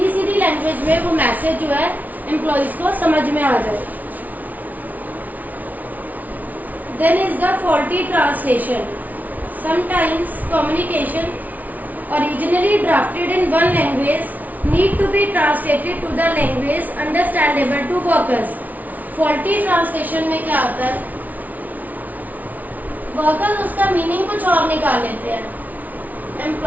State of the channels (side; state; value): left; late; 0.076 ms